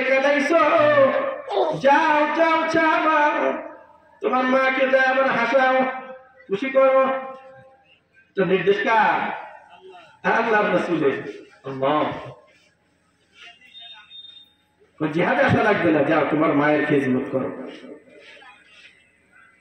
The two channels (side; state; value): both; identical; correlation 1.00